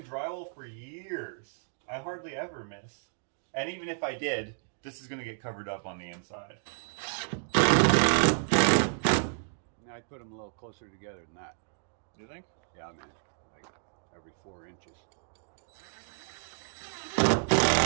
drywall for years. I hardly ever miss. And even if I did, this is going to get covered up on the inside. I'd put them a little closer together than that. Do you think? Yeah, man. Like every 4 inches.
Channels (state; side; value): silent; left; digital silence